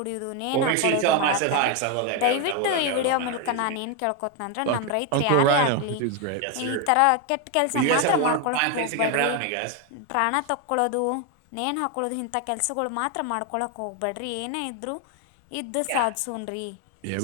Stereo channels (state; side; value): different; both; correlation 0.01